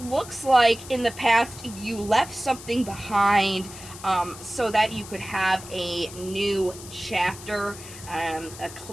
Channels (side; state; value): left; noise; hiss, 15 dB below the sound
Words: looks like in the past you left something behind, so that you could have a new chapter, a